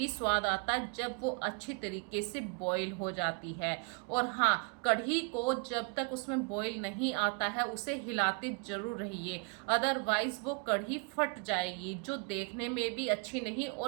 स्वाद आता है जब वो अच्छी तरीके से बॉईल हो जाती है। और हाँ, कढ़ी को जब तक उसमें बॉईल नहीं आता है उसे हिलाते जरूर रहिए, अदरवाइज वो कढ़ी फट जाएगी, जो देखने में भी अच्छी नहीं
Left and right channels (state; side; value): quieter; left; 34.4 dB